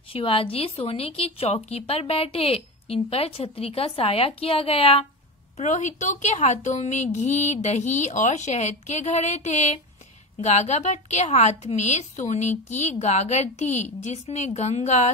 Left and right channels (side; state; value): both; normal; correlation 0.22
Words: शिवाजी सोने की चौकी पर बैठे। इन पर छतरी का साया किया गया। पुरोहितों के हाथों में घी, दही और शहद के घड़े थे। गागा भट्ट के हाथ में सोने की गागर थी, जिसमें गंगा,